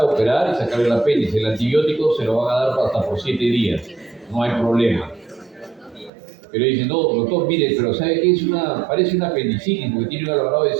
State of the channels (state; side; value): drops out; left; at 6.1 s